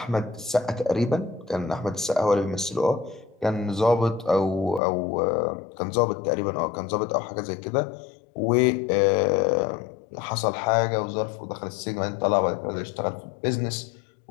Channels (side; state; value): right; drops out; at 4.8 s